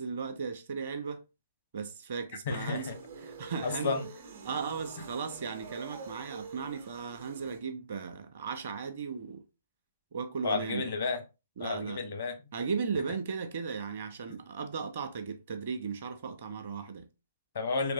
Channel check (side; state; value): both; inverted; correlation -0.64